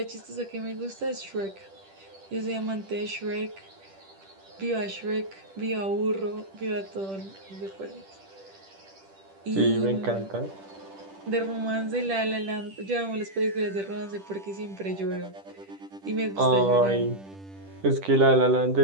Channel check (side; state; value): left; late; 10 ms